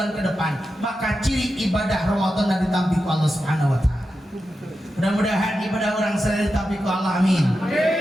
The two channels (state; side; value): normal; both; correlation 0.90